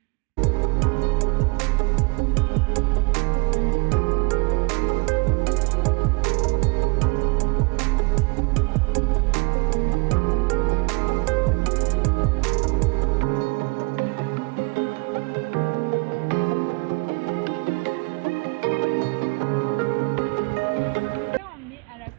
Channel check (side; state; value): left; quieter; 28.6 dB